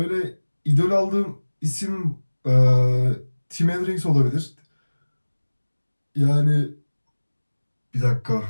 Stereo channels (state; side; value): inverted; both; correlation -1.00